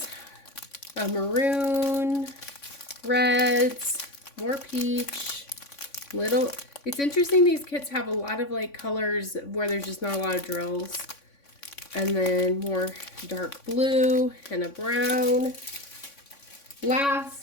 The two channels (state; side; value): late; right; 3.5 ms